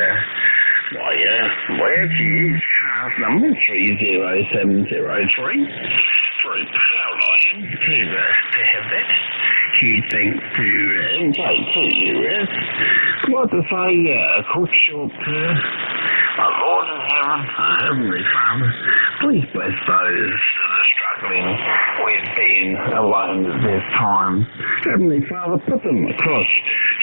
where to use cars number 30703. Very proud I am to have that. Huge thanks to NJ2US. Like to say, quick short our Lord in heaven, our Heavenly Father, please bless those that are struggling with being alone at this time. Heavenly Father, put them across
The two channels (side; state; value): both; inverted; correlation -1.00